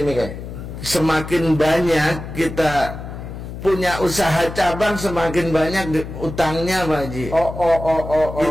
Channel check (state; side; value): noise; left; hum, 10 dB below the sound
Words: semakin banyak kita punya usaha cabang, semakin banyak utangnya Pak Haji.